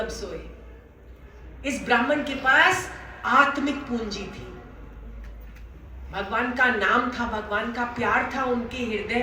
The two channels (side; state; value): both; identical; correlation 1.00